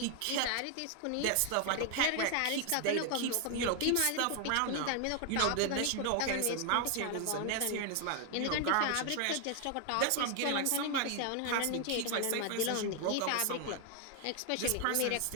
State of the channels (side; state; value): both; different; correlation 0.00